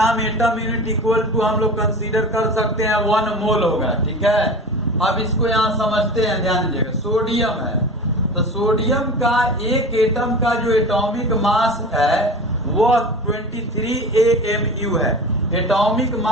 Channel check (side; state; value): both; normal; correlation 0.34